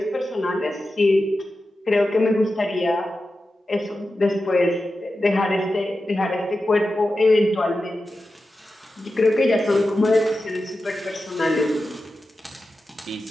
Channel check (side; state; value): both; normal; correlation 0.92